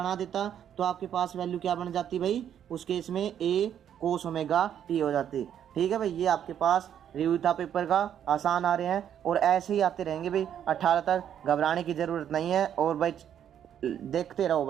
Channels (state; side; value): quieter; left; 9.6 dB